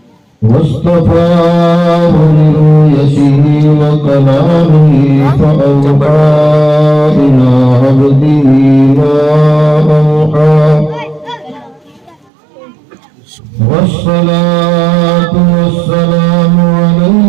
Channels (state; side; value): drops out; left; at 12.3 s